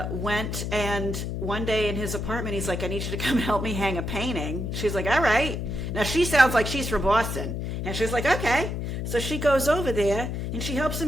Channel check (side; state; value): left; noise; hum, 3 dB below the sound